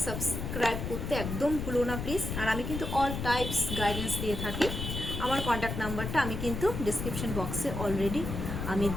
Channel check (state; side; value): noise; left; rumble, 4 dB below the sound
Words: সাবস্ক্রাইব করতে একদম ভুলো না প্লিজ। আর আমি কিন্তু অল টাইপস গাইডেন্স দিয়ে থাকি, আমার কন্ট্যাক্ট নাম্বারটা আমি কিন্তু ডিসক্রিপশন বক্সে অলরেডি আমি